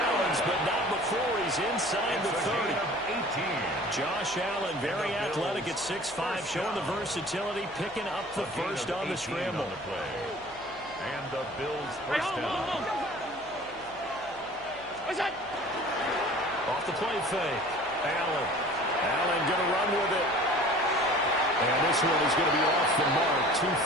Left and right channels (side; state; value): left; noise; hum, 25 dB below the sound